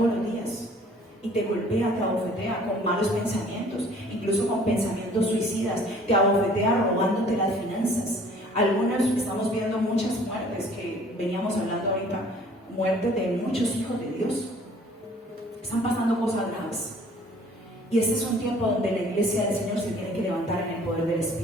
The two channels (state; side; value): normal; both; correlation 0.54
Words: los días. Y te golpea, te abofetea con malos pensamientos, incluso con pensamientos suicidas, te abofetea robándote las finanzas. Algunos estamos viendo muchas muertes que veníamos hablando ahorita, muertes de muchos hijos de Dios. Están pasando cosas graves. Y este es un tiempo donde la iglesia del Señor se tiene que levantar en el poder del